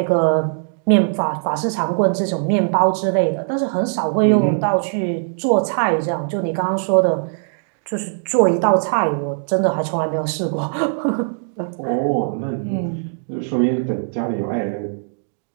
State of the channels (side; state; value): left; silent; digital silence